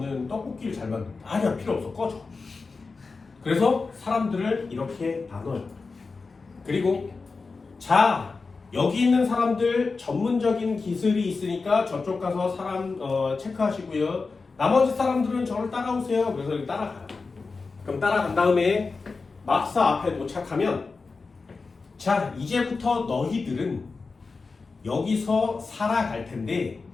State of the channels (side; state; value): right; quieter; 4.3 dB